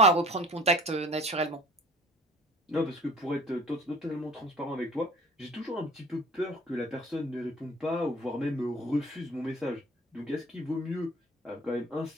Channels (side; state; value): both; normal; correlation 0.46